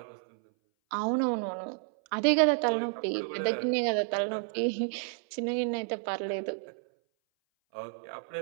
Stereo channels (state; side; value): silent; left; 58 dB below the other